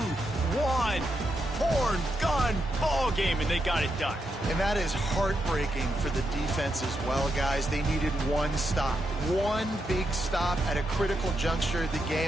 1, horn, gun, ball game, and they got it done. And that is heartbreaking for the defense as well, guys. They needed one stop, one big stop at a critical juncture of the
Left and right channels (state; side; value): normal; both; correlation 0.83